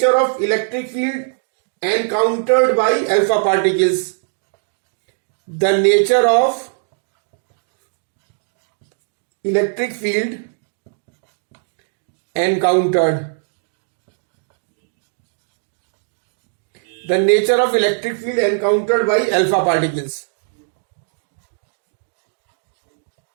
of electric field encountered by alpha particles. The nature of electric field encountered. The nature of electric field encountered by alpha particles.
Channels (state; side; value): silent; left; digital silence